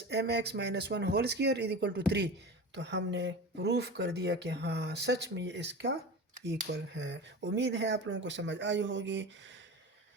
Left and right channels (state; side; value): normal; both; correlation 0.31